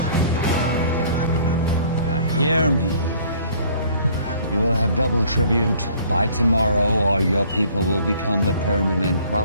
Now hear me. You will have double tribute by tomorrow, or your people will become the permanent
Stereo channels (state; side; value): inverted; both; correlation -0.55